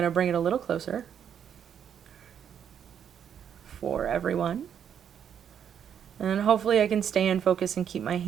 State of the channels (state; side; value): quieter; left; 8.5 dB